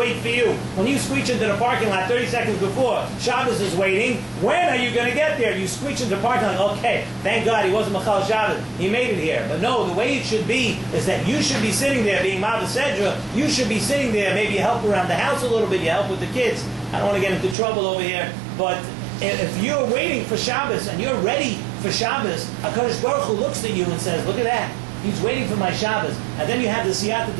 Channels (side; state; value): left; drops out; at 17.6 s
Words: for you. When you screech into the parking lot 30 seconds before, Shabbos is waiting. When are you going to get there? You screech into the parking lot, okay, thank God he wasn't Machal Shabbos. He made it here. But no, the way it should be is that you should be sitting there being Ma'av Sedra. You should be sitting there, maybe you help around the house a little bit, you help with the kids. I don't want to get into trouble over here, but if you're waiting for Shabbos and you're ready for Shabbos, HaKadosh Baruch Hu looks at you and says, look at that. He's waiting for my Shabbos. And then you have the siyata